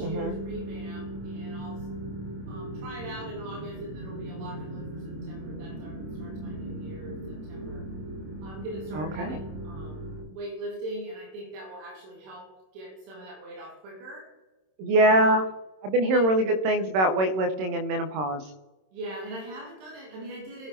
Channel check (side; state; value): left; late; 26 ms